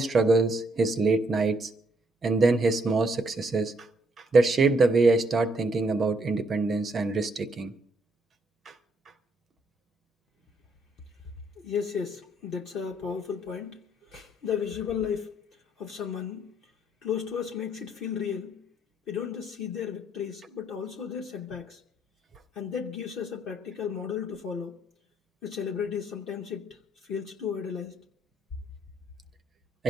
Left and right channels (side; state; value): both; normal; correlation 0.71